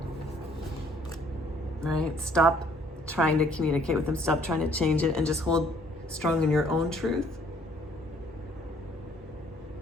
Right? Stop trying to communicate with them. Stop trying to change it and just hold strong in your own truth.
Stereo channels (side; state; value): both; normal; correlation 0.61